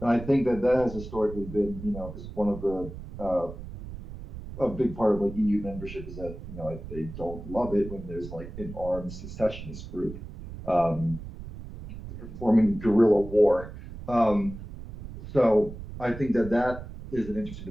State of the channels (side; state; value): right; noise; rumble, 12 dB below the sound